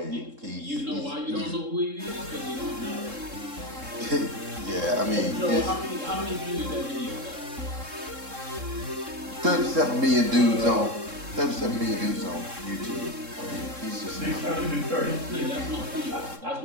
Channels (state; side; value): late; left; 3.7 ms